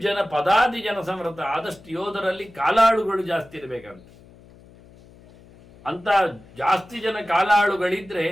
ಜನ ಪದಾದಿ ಜನ ಸಂವೃತ. ಆದಷ್ಟು ಯೋಧರಲ್ಲಿ ಕಾಲಾಳುಗಳು ಜಾಸ್ತಿ ಇರಬೇಕಂತ. ಅಂತ ಜಾಸ್ತಿ ಜನ ಕಾಲಾಳುಗಳಿದ್ರೆ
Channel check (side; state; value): left; noise; hum, 24 dB below the sound